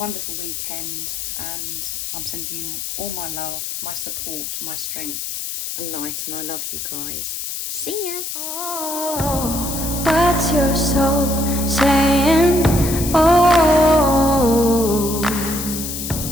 weekend, and I'm sending you all my love, my support, my strength and light, and I love you guys. See ya. Oh, what's your soul saying? Oh.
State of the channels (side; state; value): left; noise; hiss, 5 dB below the sound